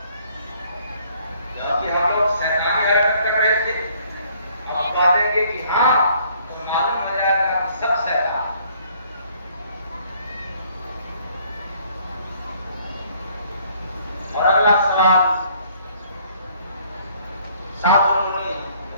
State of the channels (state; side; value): inverted; both; correlation -0.62